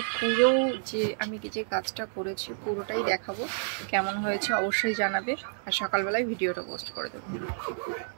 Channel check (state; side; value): silent; left; 58 dB below the other